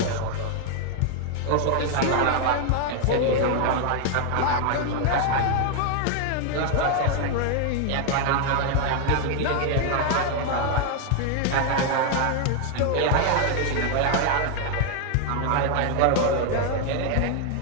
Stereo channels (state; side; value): different; both; correlation 0.00